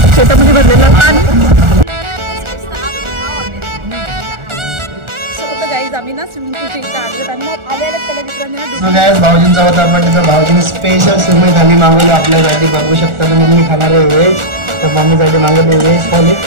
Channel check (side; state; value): left; late; 1.4 ms